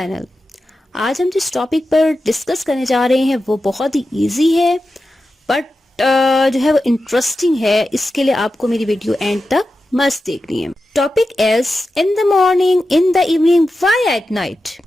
आज हम जिस टॉपिक पर डिस्कस करने जा रहे हैं वो बहुत ही इजी है बट जो है वो इंटरेस्टिंग है। इसके लिए आपको मेरी वीडियो एंड तक मस्त देखनी है। Topic is in the morning, in the evening, why at night.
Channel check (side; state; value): both; normal; correlation 0.91